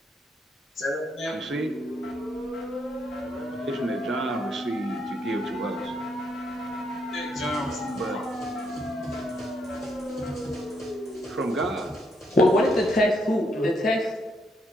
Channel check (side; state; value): both; normal; correlation 0.76